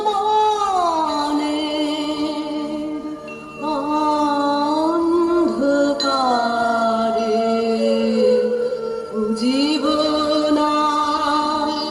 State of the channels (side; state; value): both; identical; correlation 1.00